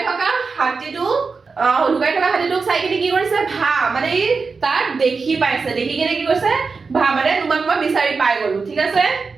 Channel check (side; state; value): left; quieter; 4.7 dB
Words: থকা হাতীটোক চাই কিনে কি কৰিছে ভা মানে তাক দেখি পাইছে দেখি কিনে কি কৰিছে ভা মানে তোমাক মই বিচাৰি পাই গলো ঠিক আছে